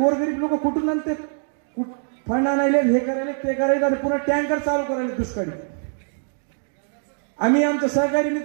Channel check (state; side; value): silent; left; 63 dB below the other